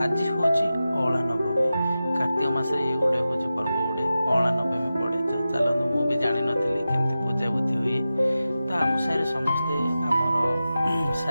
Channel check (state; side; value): inverted; both; correlation -0.93